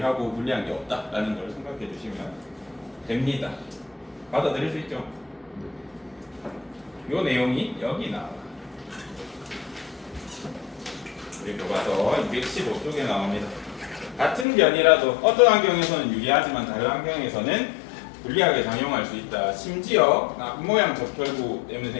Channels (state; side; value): drops out; right; at 14.5 s